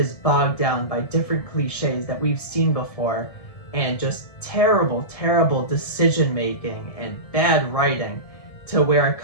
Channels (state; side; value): late; right; 1.7 ms